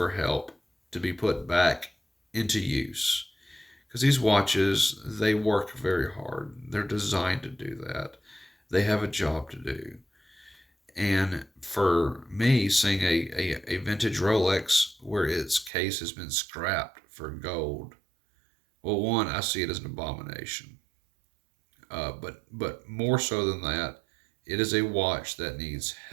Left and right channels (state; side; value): drops out; left; at 15.7 s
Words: help to be put back into use. Because these watches, they work very hard. They're designed to do that. They have a job to do. And for me, seeing a vintage Rolex where its case has been scrapped for gold, well, one, I see it as an abomination. But more so than that, it is a watch that needs